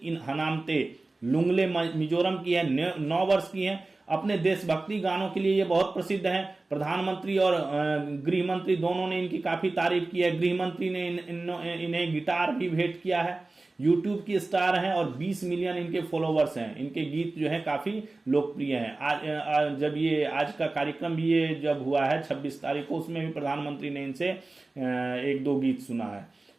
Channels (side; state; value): left; quieter; 3.2 dB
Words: इन हनामते, लुंगले मिजोरम की है, 9 वर्ष की है। अपने देशभक्ति गानों के लिए ये बहुत प्रसिद्ध हैं। प्रधानमंत्री और गृह मंत्री दोनों ने इनकी काफी तारीफ की है। गृह मंत्री ने इन्हें गिटार भी भेंट किया है। यूट्यूब की स्टार हैं और 20 मिलियन इनके फॉलोवर्स हैं। इनके गीत जो है काफी लोकप्रिय हैं। जब ये आज का कार्यक्रम भी ये जब हुआ है 26 तारीख को, उसमें भी प्रधानमंत्री ने इनसे 1-2 गीत सुना है।